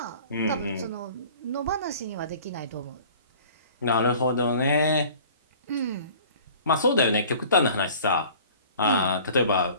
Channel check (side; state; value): both; inverted; correlation -0.47